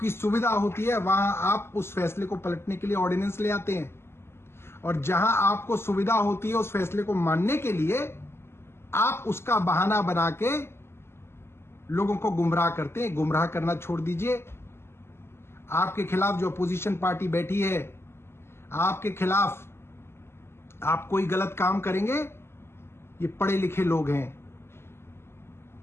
सुविधा होती है, वहां आप उस फैसले को पलटने के लिए ऑर्डिनेंस ले आते हैं। और जहां आपको सुविधा होती है उस फैसले को मानने के लिए, आप उसका बहाना बना के लोगों को गुमराह करते हैं। गुमराह करना छोड़ दीजिए। आपके खिलाफ जो अपोजिशन पार्टी बैठी है, आपके खिलाफ आप कोई गलत काम करेंगे, ये पढ़े लिखे लोग हैं,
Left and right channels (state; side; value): late; right; 0.12 ms